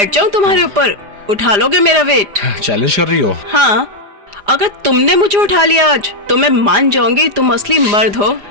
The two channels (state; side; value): late; left; 4.9 ms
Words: जाऊं तुम्हारे ऊपर? उठा लोगे मेरा वेट? चैलेंज कर रही हो? हाँ, अगर तुमने मुझे उठा लिया आज तो मैं मान जाऊंगी तुम असली मर्द हो।